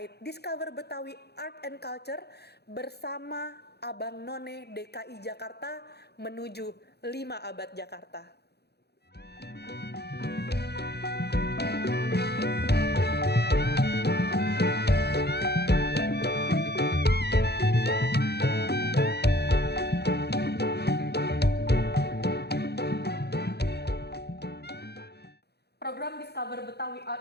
Discover Betawi Art and Culture bersama Abang None DKI Jakarta menuju 5 abad Jakarta. Program Discover Betawi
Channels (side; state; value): right; late; 0.48 ms